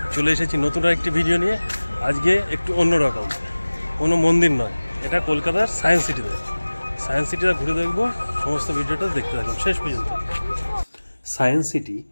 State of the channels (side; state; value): both; inverted; correlation -1.00